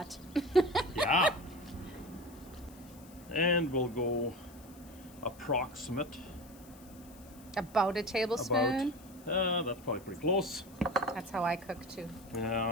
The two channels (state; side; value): noise; left; hiss, 23 dB below the sound